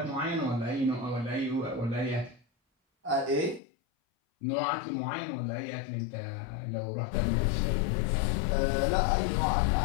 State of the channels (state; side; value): drops out; right; at 3.6 s